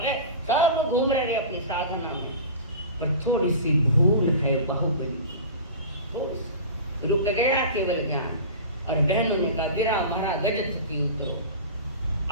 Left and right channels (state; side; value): inverted; both; correlation -0.34